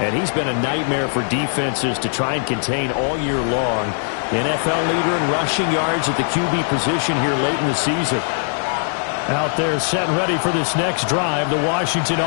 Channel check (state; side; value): silent; right; 65 dB below the other